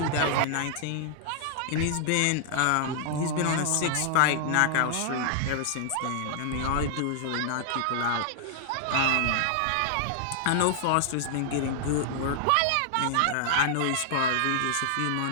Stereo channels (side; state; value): both; different; correlation -0.01